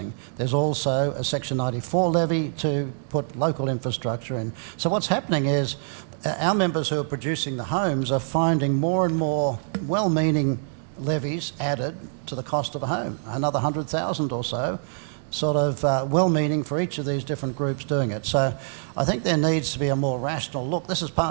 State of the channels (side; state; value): left; silent; digital silence